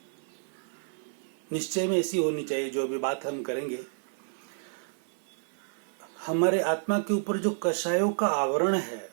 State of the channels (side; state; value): left; silent; 58 dB below the other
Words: निश्चय में ऐसी होनी चाहिए जो अभी बात हम करेंगे। हमारे आत्मा के ऊपर जो कषायों का आवरण है